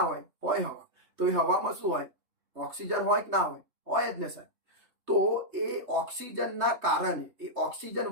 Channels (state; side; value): late; left; 3.2 ms